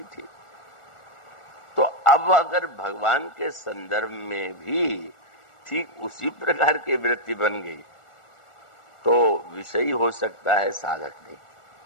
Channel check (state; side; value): late; right; 1.4 ms